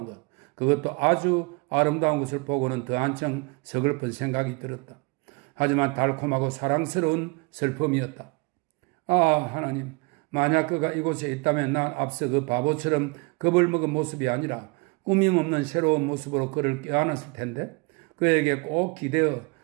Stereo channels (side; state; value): left; quieter; 29.0 dB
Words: 것, 그것도 아주 아름다운 것을 보고는 더 한층 서글픈 생각이 들었다. 하지만 달콤하고 사랑스러운 슬픔이었다. 아, 하나님, 만약 그가 이곳에 있다면 난 앞서 그 바보처럼 겁을 먹은 모습이 아니라 꾸밈없는 새로운 모습으로 그를 껴안았을 텐데, 그에게 꼭 기대어